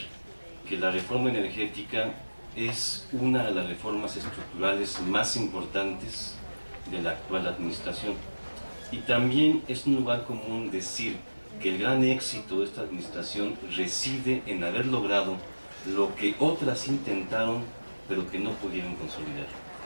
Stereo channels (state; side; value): inverted; both; correlation -1.00